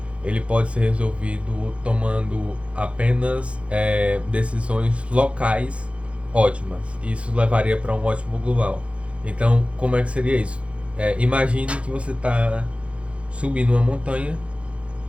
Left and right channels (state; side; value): late; left; 0.061 ms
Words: ele pode ser resolvido tomando apenas decisões locais ótimas. Isso levaria para um ótimo global. Então, como é que seria isso? Imagine que você está subindo uma montanha.